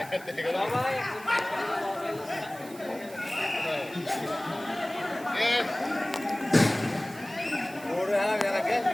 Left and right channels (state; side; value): noise; right; hiss, 20 dB below the sound